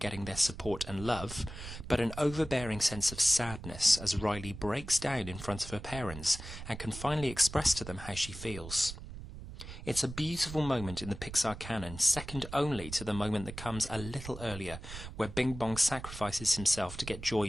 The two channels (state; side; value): noise; right; rumble, 11 dB below the sound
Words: getting their support and love, but an overbearing sense of sadness as Riley breaks down in front of her parents and can finally express to them how she feels. It's a beautiful moment in the Pixar canon, second only to the moment that comes a little earlier, where Bing Bong sacrifices himself to get